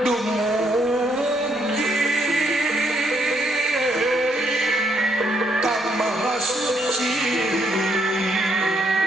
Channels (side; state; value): both; normal; correlation 0.73